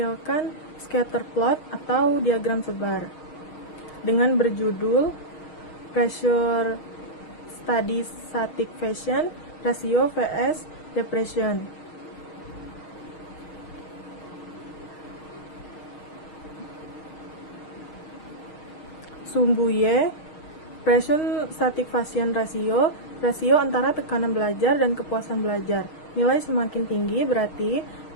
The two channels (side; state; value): right; late; 6.4 ms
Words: scatter plot atau diagram sebar dengan berjudul Pressure Study Satisfaction Ratio vs Depression. Sumbu Y, Pressure Satisfaction Ratio, rasio antara tekanan belajar dan kepuasan belajar. Nilai semakin tinggi berarti